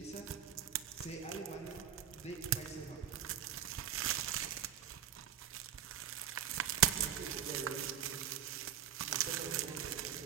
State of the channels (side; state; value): left; quieter; 9.9 dB